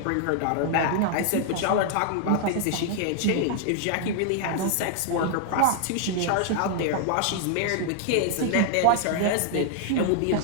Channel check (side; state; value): both; different; correlation 0.00